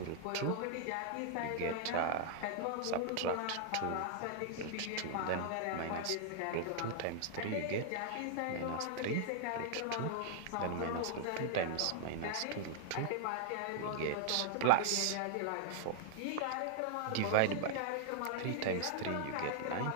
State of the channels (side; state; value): both; different; correlation -0.01